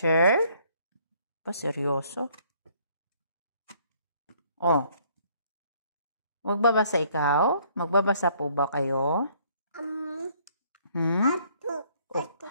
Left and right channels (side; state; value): both; inverted; correlation -0.63